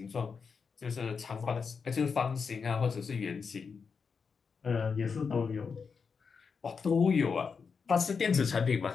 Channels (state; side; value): quieter; right; 5.6 dB